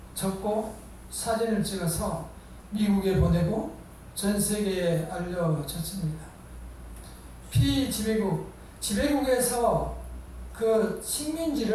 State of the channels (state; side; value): identical; both; correlation 1.00